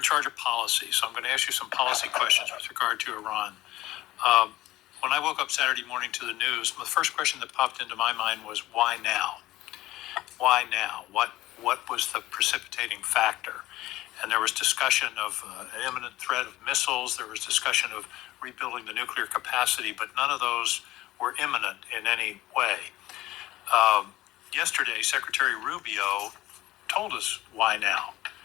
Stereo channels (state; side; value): quieter; right; 16.6 dB